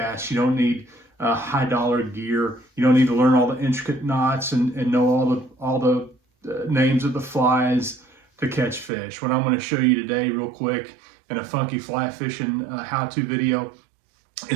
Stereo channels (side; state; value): left; drops out; at 8.9 s